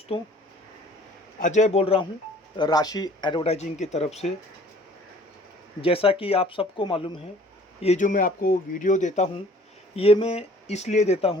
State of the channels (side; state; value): both; normal; correlation 0.53